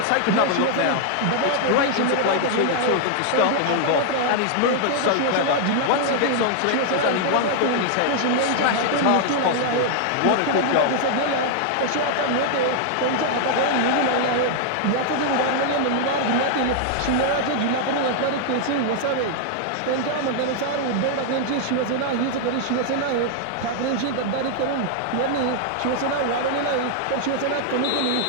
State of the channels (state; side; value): different; both; correlation -0.01